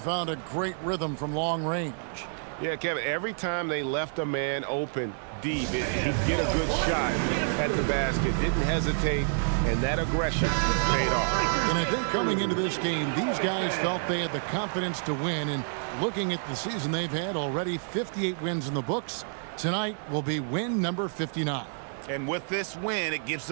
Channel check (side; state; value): left; silent; digital silence